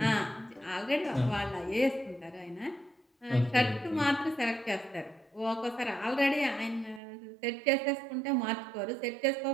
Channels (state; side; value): drops out; left; at 7.0 s